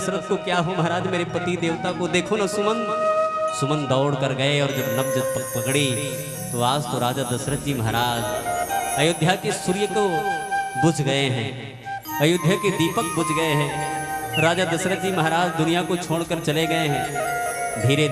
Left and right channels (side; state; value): both; identical; correlation 1.00